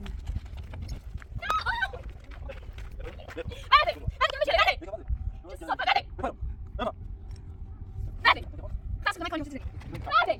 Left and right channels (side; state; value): both; identical; correlation 1.00